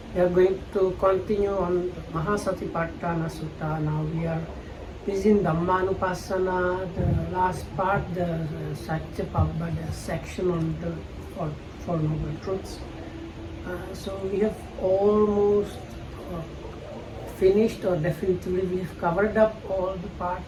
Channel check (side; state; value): both; identical; correlation 1.00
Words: We are going to continue on Maha satipatthana Sutta. Now we are in Dhammanupassana, the last part, the satipatthana section on the Four Noble Truths. So we have almost finished, or definitely we have covered up all the